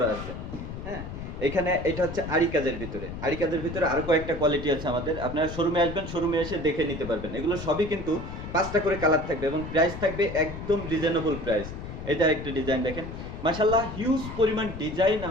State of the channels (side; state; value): left; noise; rumble, 9 dB below the sound